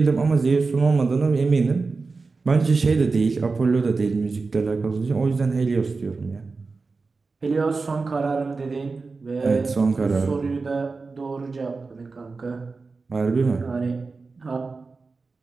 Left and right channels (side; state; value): left; quieter; 4.1 dB